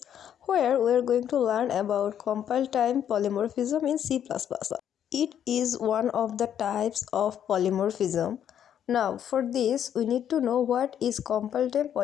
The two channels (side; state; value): right; quieter; 9.6 dB